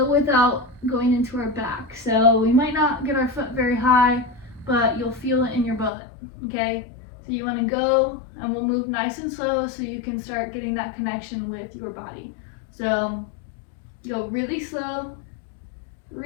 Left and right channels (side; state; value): right; drops out; at 5.9 s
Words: without going into our back. So we might not get our foot very high, but you'll feel it in your butt, okay? So you want to go, and we'll move nice and slow so you can start getting that connection with your body. So go really slow,